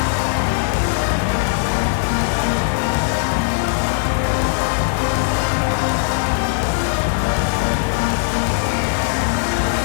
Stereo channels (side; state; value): right; silent; digital silence